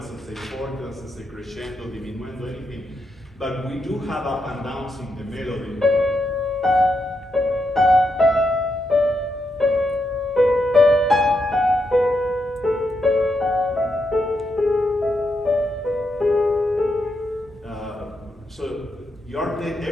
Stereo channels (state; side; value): normal; both; correlation 0.83